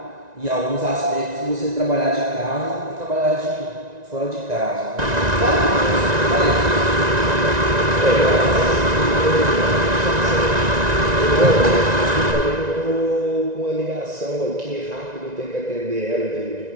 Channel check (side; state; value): left; late; 1.9 ms